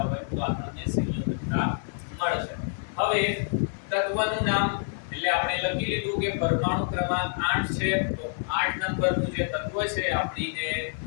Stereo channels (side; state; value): right; silent; 60 dB below the other